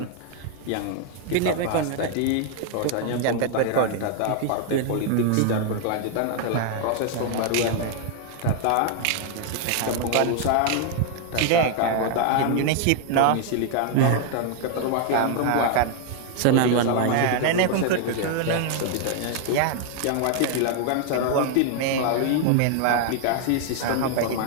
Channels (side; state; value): both; different; correlation 0.00